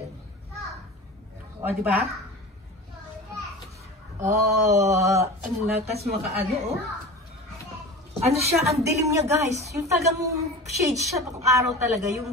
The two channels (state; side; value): normal; both; correlation 0.33